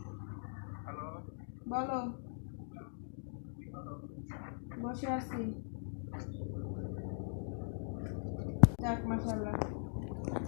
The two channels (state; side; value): silent; right; digital silence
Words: বলো। বসে আছি। যাক মাশাআল্লাহ,